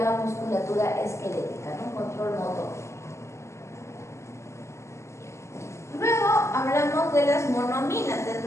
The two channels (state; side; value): late; right; 0.13 ms